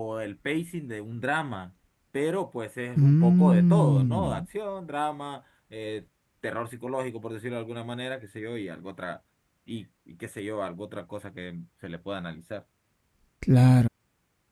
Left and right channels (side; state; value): both; identical; correlation 1.00